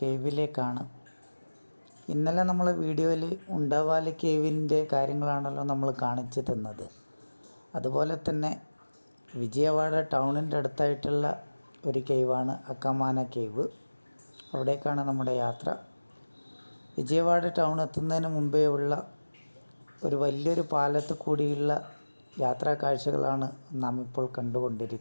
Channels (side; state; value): both; inverted; correlation -1.00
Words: ഇന്നലെ നമ്മൾ വീഡിയോയിൽ ഉണ്ടാവാലി കേവിൻ്റെ കാര്യങ്ങളാണല്ലോ നമ്മൾ കാണിച്ചു തന്നത്. അതുപോലെ തന്നെ വിജയവാഡ ടൗണിൻ്റെ അടുത്തായിട്ടുള്ള ഒരു കേവാണ് അക്കാമാന കേവ്. അവിടേക്കാണ് നമ്മുടെ യാത്ര. വിജയവാഡ ടൗൺ എത്തുന്നതിന് മുമ്പേ ഉള്ള ഒരു വലിയൊരു പാലത്ത് കൂടിയുള്ള യാത്രാ കാഴ്ചകളാണ് നാം ഇപ്പോൾ